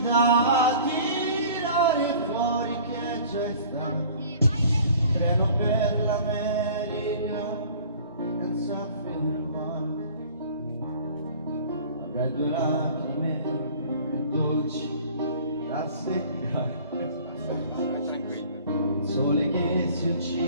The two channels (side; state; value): both; inverted; correlation -0.48